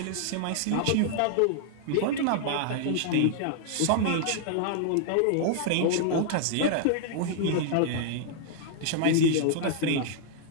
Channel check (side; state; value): both; different; correlation -0.01